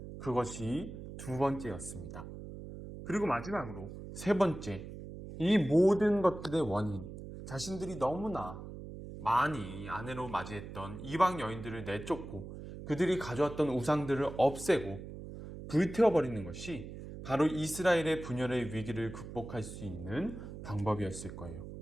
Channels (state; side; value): noise; right; hum, 11 dB below the sound